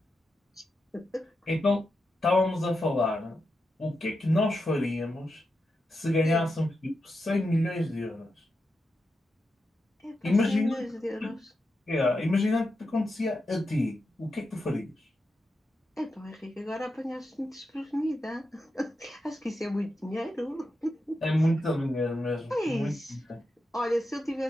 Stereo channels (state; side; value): normal; both; correlation 0.88